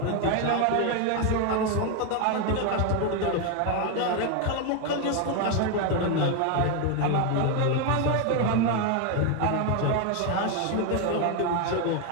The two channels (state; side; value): different; both; correlation 0.01